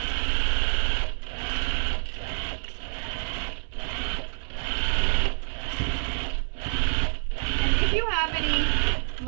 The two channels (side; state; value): left; silent; digital silence